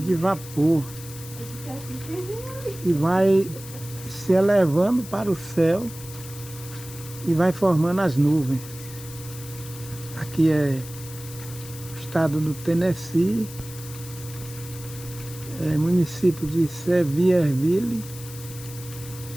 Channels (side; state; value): left; noise; hiss, 15 dB below the sound